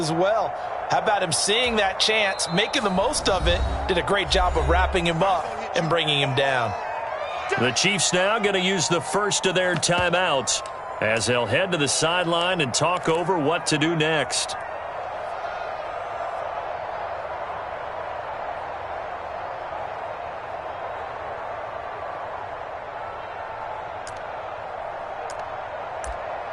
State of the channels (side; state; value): both; identical; correlation 1.00